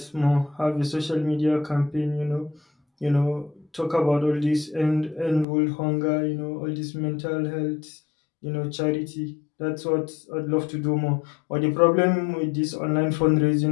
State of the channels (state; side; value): drops out; right; at 5.5 s